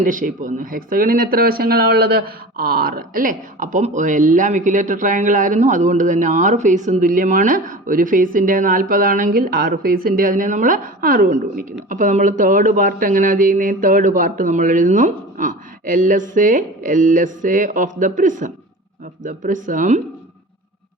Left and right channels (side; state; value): both; normal; correlation 0.36